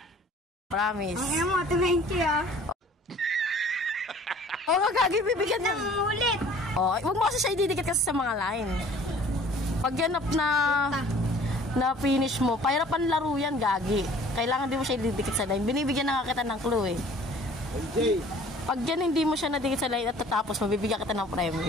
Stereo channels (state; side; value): normal; both; correlation 0.51